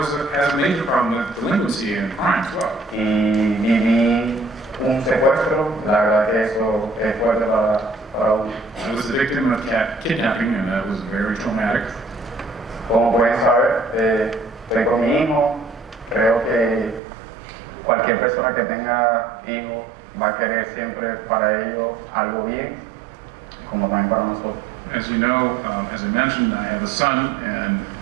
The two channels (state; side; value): drops out; left; at 17.0 s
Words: has a major problem with delinquency and crime as well. Y viví un secuestro, la verdad que eso es fuerte para uno. I was the victim of kidnapping, and that was very traumatic. Como pueden saber, estoy con mi hijo. Creo que cualquier persona que tenga hijos va a querer siempre para ellos algo bien, como también para nosotros. As you know, as I mentioned, I have a son, and